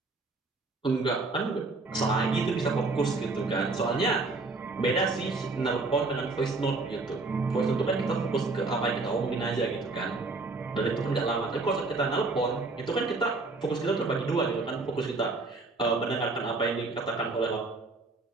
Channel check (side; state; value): left; quieter; 3.5 dB